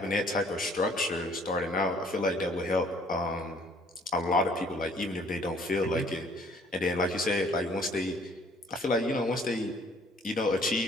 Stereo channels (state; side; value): normal; both; correlation 0.59